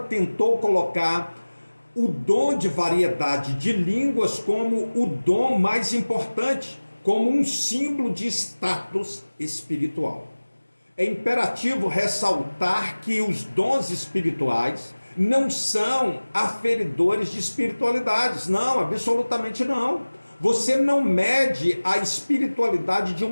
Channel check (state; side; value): inverted; both; correlation -1.00